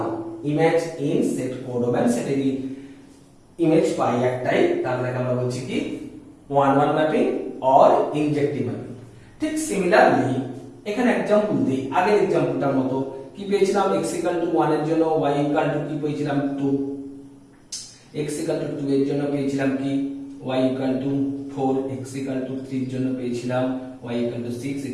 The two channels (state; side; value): identical; both; correlation 1.00